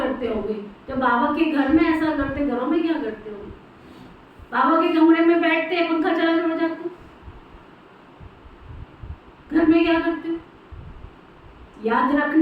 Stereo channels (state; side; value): identical; both; correlation 1.00